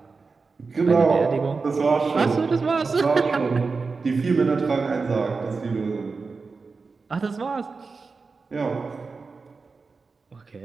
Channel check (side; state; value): left; quieter; 4.4 dB